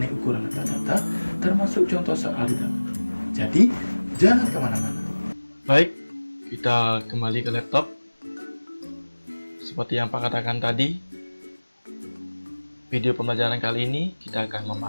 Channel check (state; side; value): inverted; both; correlation -1.00